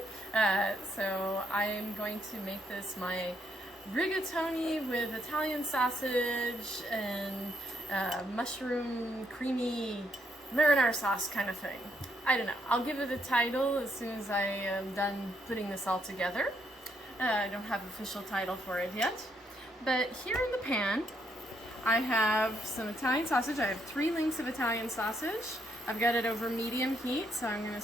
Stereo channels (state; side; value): normal; both; correlation 0.75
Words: So I'm going to make this my rigatoni with Italian sausage and mushroom creamy marinara sauce kind of thing. I don't know. I'll give it a title as soon as I am done putting this all together. I don't have an official title for it yet. But here in the pan, I have some Italian sausage. I have 3 links of Italian sausage. I've got it over medium heat, so I'm going to